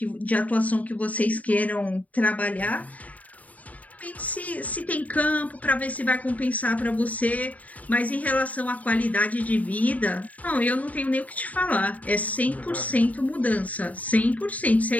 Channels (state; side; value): late; right; 0.072 ms